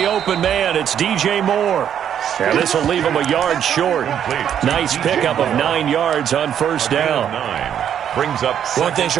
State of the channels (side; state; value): left; quieter; 9.3 dB